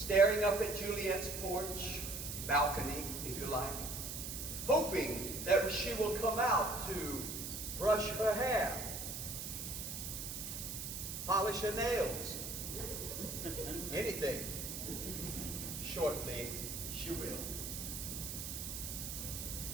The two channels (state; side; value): noise; right; hiss, 6 dB below the sound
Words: up at Juliet's porch, balcony, if you like, hoping that she will come out to brush her hair, polish her nails, anything. Shortly, she will.